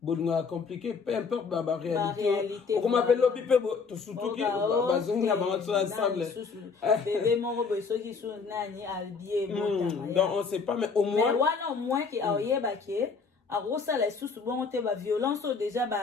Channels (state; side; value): quieter; right; 5.1 dB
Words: bon compliqué peu importe la réalité on m'appelle l'opi pe to surtout qui bazonga bantu ensemble donc on sait pas mais au moins qui aoyeba que alors ça les sous bon te ba violence déjà